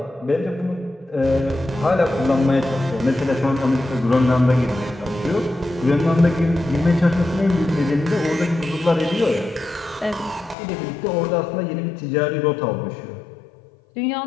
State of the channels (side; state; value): right; drops out; at 10.6 s